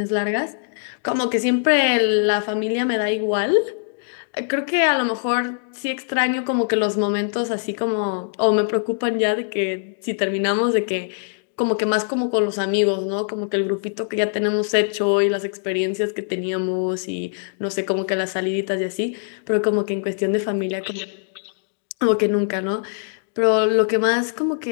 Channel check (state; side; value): silent; right; digital silence